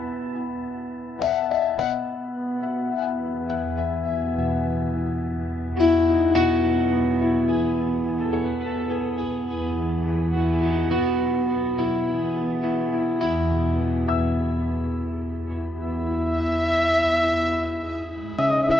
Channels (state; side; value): normal; both; correlation 0.77